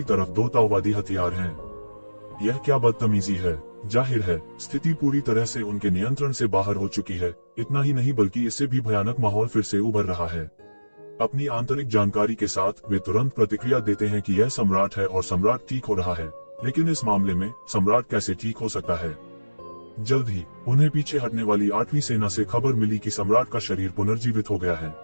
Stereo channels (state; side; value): inverted; both; correlation -1.00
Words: तरफ 2 ताओवादी हथियार हैं। यह क्या बदतमीजी है। जाहिर है स्थिति पूरी तरह से उनके नियंत्रण से बाहर हो चुकी है। इतना ही नहीं बल्कि इससे भी भयानक माहौल फिर से उभर रहा है। अपनी आंतरिक जानकारी के साथ वे तुरंत प्रतिक्रिया देते हैं कि यह सम्राट है और सम्राट ठीक हो रहा है, लेकिन इस मामले में सम्राट कैसे ठीक हो सकता है? जल्द ही उन्हें पीछे हटने वाली 8वीं सेना से खबर मिली कि सम्राट का शरीर पुनर्जीवित हो गया है,